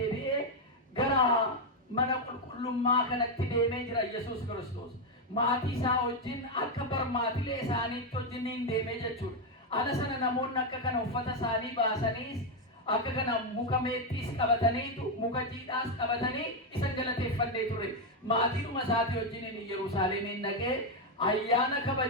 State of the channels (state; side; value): normal; both; correlation 0.04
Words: gara mana qulqullummaa kanatti deemee jira Yesuus Kiristoos. Maatii isaa wajjin akka barmaatilee isaaniitti wajjin deemee jechuudha. Ala sana namoonni akka kana uffata isaanii baasaniis akka kana muka meexxiis qabataniitu muka jiidhaas qabatanii isan galateeffannee ture. Maatiidhuma isaatii wajjin Yerusaalemiin dhaqee ayyaana